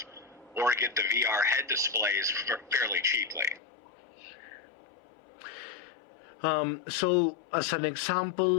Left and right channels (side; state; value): right; drops out; at 3.6 s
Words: or get the VR head displays fairly cheaply. So, as an